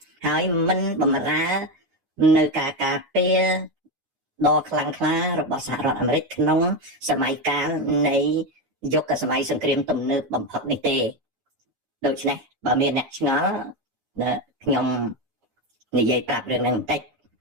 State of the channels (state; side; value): late; left; 9.7 ms